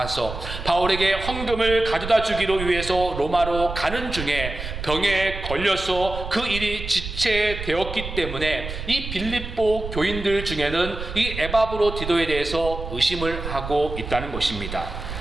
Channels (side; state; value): right; noise; rumble, 8 dB below the sound